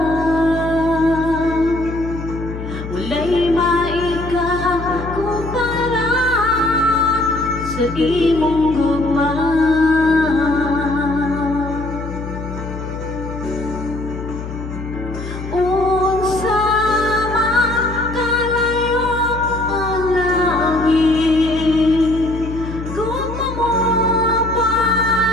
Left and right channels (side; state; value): left; noise; hum, 9 dB below the sound